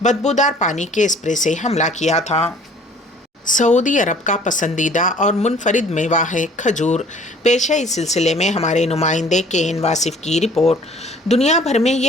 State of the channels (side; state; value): both; normal; correlation 0.53